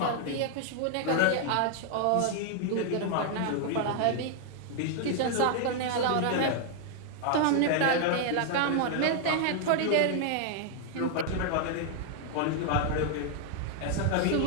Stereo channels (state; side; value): different; both; correlation 0.00